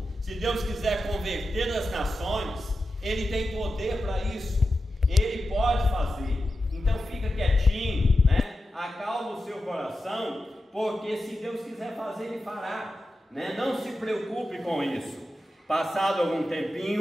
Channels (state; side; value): normal; both; correlation 0.91